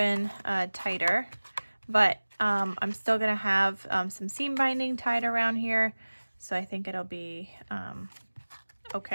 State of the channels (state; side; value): inverted; both; correlation -1.00